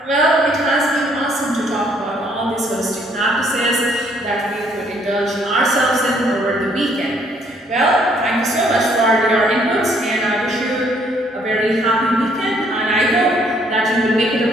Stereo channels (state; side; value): normal; both; correlation 0.66